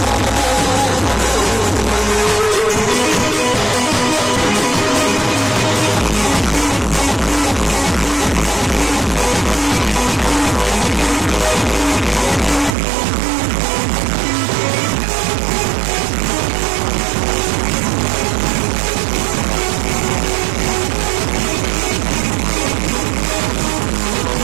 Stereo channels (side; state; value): left; drops out; at 12.7 s